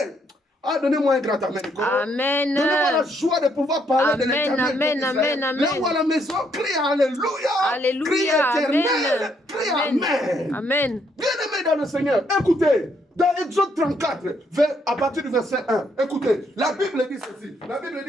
Ah, donnez-moi un grand amen. Amen. Donnez-moi la joie de pouvoir parler de l'éternel. Amen, amen, amen. Là-haut à la maison, crie alléluia. Alléluia. Crie éternel. Crie amen. Amen. Bien-aimé dans le Seigneur, écoutez, dans Exode 34, à partir du verset 1, écoutez, la Bible dit ceci. La Bible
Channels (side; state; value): both; normal; correlation 0.72